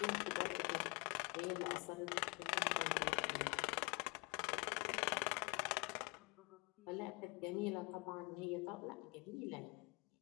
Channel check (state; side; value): quieter; right; 29.1 dB